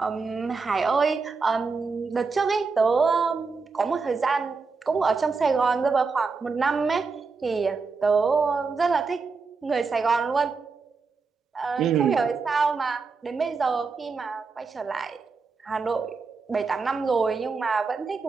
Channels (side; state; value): left; quieter; 4.6 dB